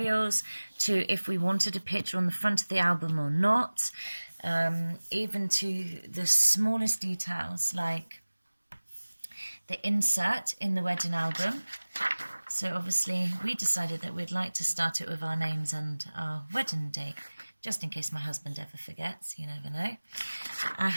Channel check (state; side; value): inverted; both; correlation -1.00